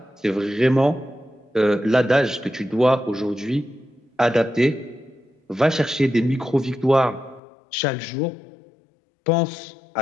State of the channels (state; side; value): drops out; right; at 7.4 s